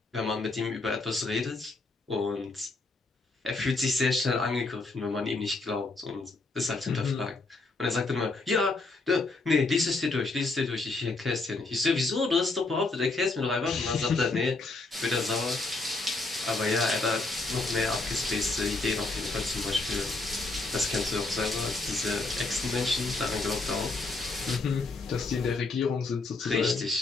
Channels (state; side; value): quieter; right; 3.5 dB